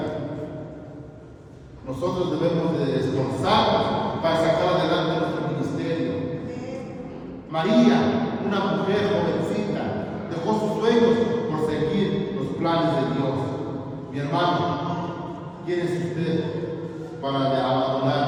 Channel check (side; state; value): both; identical; correlation 1.00